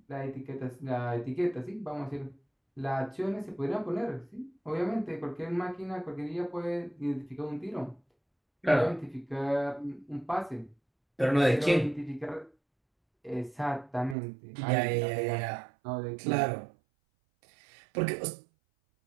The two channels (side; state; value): left; drops out; at 14.2 s